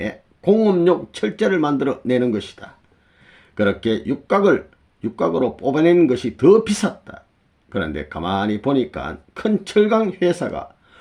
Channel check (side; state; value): both; identical; correlation 1.00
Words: 공업용 철제를 만들어 내는 것이다. 그렇게 육각으로 뽑아내는 것이 더 비쌌다. 그런데 가만히 보니까 큰 철강 회사가